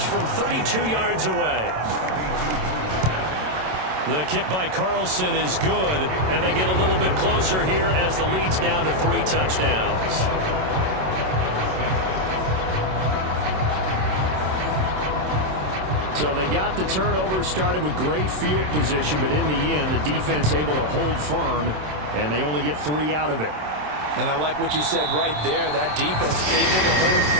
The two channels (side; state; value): left; late; 27 ms